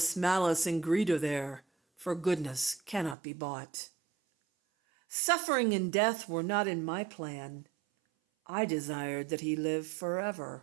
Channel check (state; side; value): drops out; left; at 3.2 s